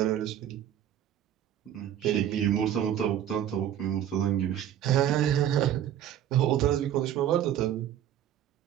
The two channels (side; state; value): left; quieter; 10.8 dB